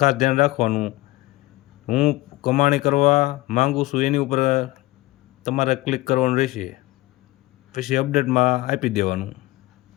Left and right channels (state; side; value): quieter; right; 19.1 dB